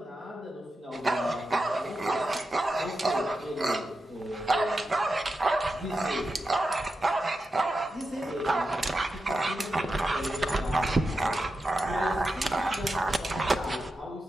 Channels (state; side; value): normal; both; correlation 0.90